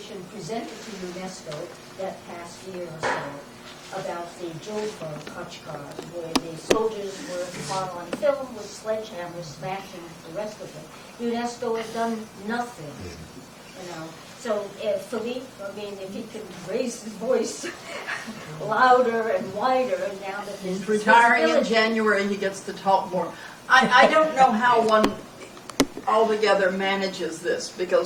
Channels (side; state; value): both; identical; correlation 1.00